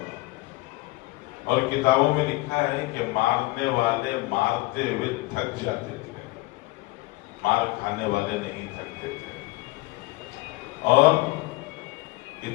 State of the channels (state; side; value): quieter; right; 21.4 dB